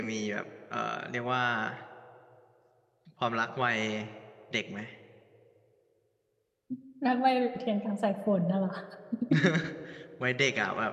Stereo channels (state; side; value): identical; both; correlation 1.00